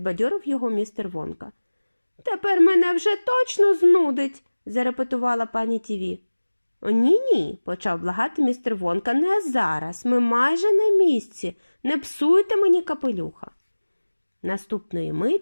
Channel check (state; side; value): inverted; both; correlation -1.00